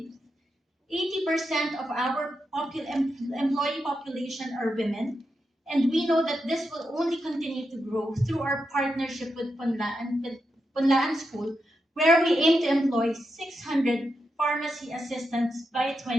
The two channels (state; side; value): normal; both; correlation 0.86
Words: 80% of our employee population are women, and we know that this will only continue to grow through our partnership with Punlaan School, where we aim to employ 600 pharmacy assistants by